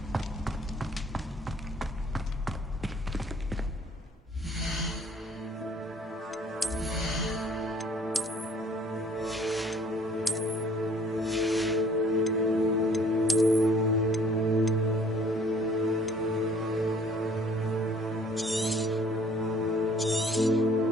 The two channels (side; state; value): both; normal; correlation 0.56